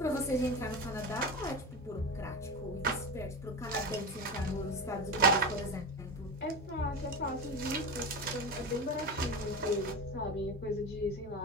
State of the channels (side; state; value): both; normal; correlation 0.23